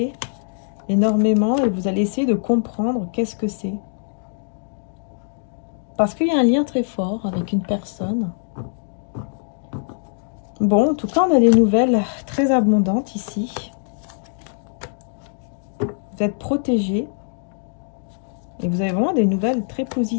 énormément et vous allez essayer de comprendre qu'est-ce que c'est. Parce qu'il y a un lien très fort avec une personne. Bon, en tout cas, on a des nouvelles très abondantes ici. Vous êtes protégé. Et vous avez vraiment des nouvelles très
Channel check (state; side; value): silent; right; digital silence